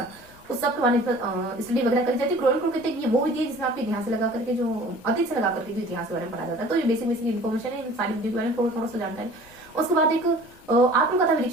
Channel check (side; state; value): left; noise; rumble, 26 dB below the sound